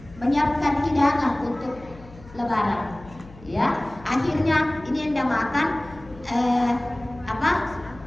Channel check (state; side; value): noise; left; hum, 20 dB below the sound